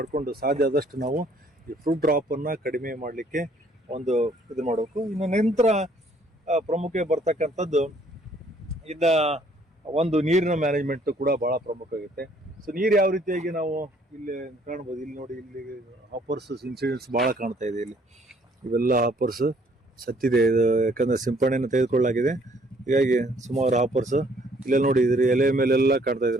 ಸಾಧ್ಯ ಆದಷ್ಟು ನಾವು ಈ ಫ್ರೂಟ್ ಡ್ರಾಪ್ ಅನ್ನ ಕಡಿಮೆ ಮಾಡಲಿಕ್ಕೆ ಇದು ಮಾಡಬೇಕು. ಇನ್ನು ನಂತರ ಪ್ರಮುಖ ಬರ್ತಕ್ಕಂಥದ್ದು ನೀರಿನ ಮ್ಯಾನೇಜ್ಮೆಂಟ್ ಕೂಡ ಬಹಳ ಪ್ರಮುಖ ಆಗುತ್ತೆ. ಸೊ ನೀರು ಯಾವ ರೀತಿಯಾಗಿ ನಾವು ಇಲ್ಲಿ ಕಾಣ್ಬೋದು, ಇಲ್ಲಿ ನೋಡಿ, ಇಲ್ಲಿ ಹಾಪರ್ಸ್ ಇನ್ಸಿಡೆಂಟ್ಸ್ ಬಹಳ ಕಾಣ್ತಾ ಇದೆ. ಇಲ್ಲಿ ಇವೆಲ್ಲ ಹಾಪರ್ಸ್ ಸತ್ತಿದೆ, ಯಾಕಂದ್ರೆ ಸಿಂಪಡಣೆಯನ್ನು ತೆಗೆದುಕೊಳ್ಳಲಾಗಿದೆ. ಹೀಗಾಗಿ ಸುಮಾರು ಹಾಪರ್ಸ್ ಇಲ್ಲೆಲ್ಲ ನೋಡಿ, ಇದ್ರ ಎಲೆ ಮೇಲೆಲ್ಲ ಕಾಣ್ತಾ ಇದೆ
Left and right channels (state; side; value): normal; both; correlation 0.62